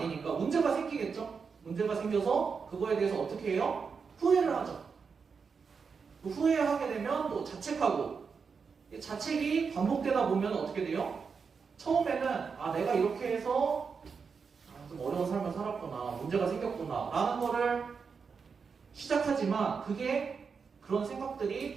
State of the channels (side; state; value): left; quieter; 5.6 dB